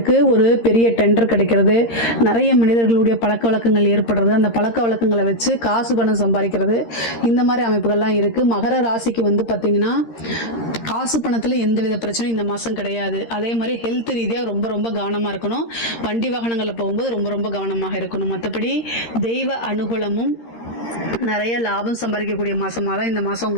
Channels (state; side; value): late; right; 13 ms